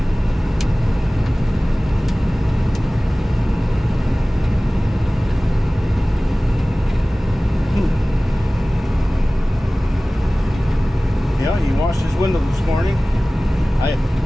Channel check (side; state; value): both; normal; correlation 0.98